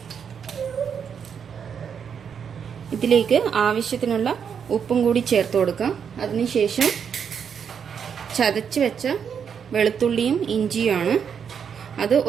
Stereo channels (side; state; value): left; quieter; 7.3 dB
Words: ഇതിലേക്ക് ആവശ്യത്തിനുള്ള ഉപ്പും കൂടി ചേർത്ത് കൊടുക്കാം. അതിനുശേഷം ചതച്ച് വെച്ച വെളുത്തുള്ളിയും ഇഞ്ചിയുമാണ്. അത്